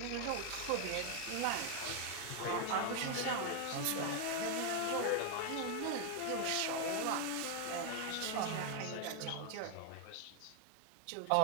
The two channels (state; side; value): different; both; correlation 0.01